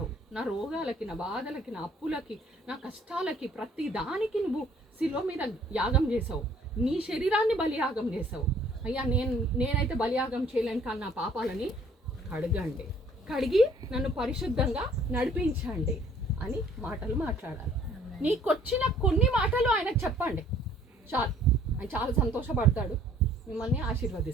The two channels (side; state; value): both; normal; correlation 0.58